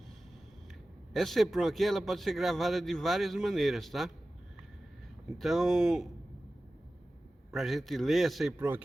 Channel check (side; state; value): both; normal; correlation 0.96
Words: Essa EEPROM aqui, ela pode ser gravada de várias maneiras, tá? Então, para a gente ler essa EEPROM